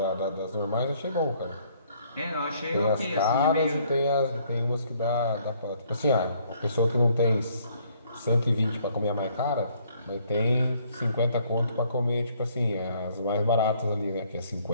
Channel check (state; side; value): inverted; both; correlation -0.64